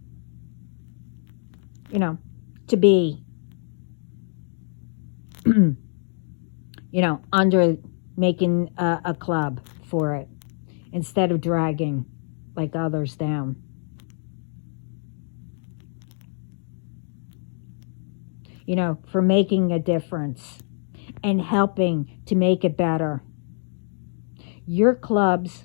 to be, under making a club for it instead of dragging like others down. For making a difference and helping to make it better. Your clubs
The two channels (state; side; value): silent; right; digital silence